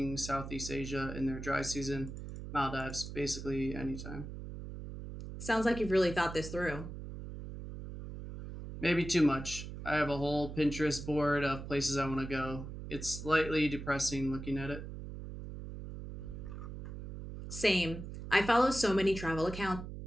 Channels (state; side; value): noise; right; hum, 9 dB below the sound